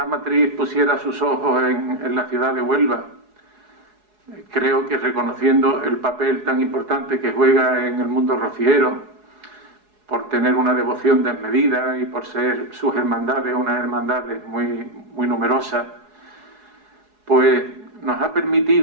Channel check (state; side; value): late; left; 4.8 ms